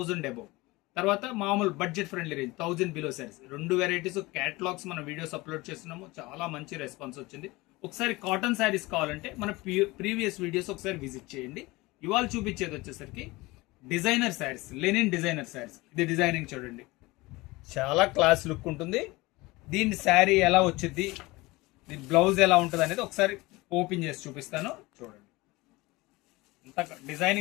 అబౌవ్, తర్వాత మామూలు budget friendly range 1000 below saris, 2 varieties catalogues మన వీడియోస్ అప్లోడ్ చేస్తున్నాము. చాలా మంచి రెస్పాన్స్ వచ్చింది. ఒకసారి కాటన్ శారీస్ కావాలంటే మన ప్రీవియస్ వీడియోస్ ఒకసారి విజిట్ చేయండి. ఇవాళ చూపించేది వచ్చేసరికి designer saris, linen designer saris. ఇది డిజైనింగ్ చూడండి, చాలా క్లాస్ లుక్ ఉంటుంది. దీని శారీ ఎలా వచ్చింది, దీని బ్లౌజ్ ఎలా ఉంటుంది అనేది ఒకసారి ఓపెన్ చేసి చూపిస్తాను. చూడండి ఎంత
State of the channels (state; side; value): quieter; right; 21.8 dB